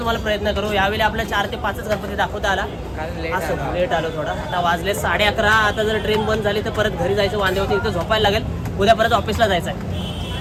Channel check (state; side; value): identical; both; correlation 1.00